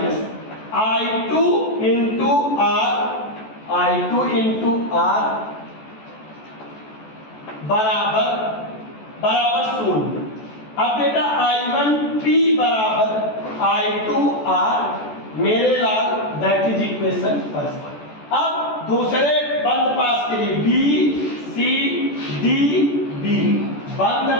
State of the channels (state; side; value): late; right; 14 ms